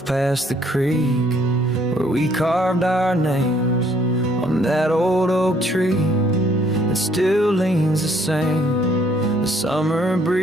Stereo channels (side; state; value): both; normal; correlation 0.64